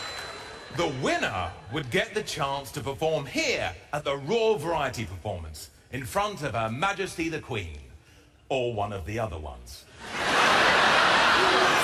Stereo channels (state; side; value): identical; both; correlation 1.00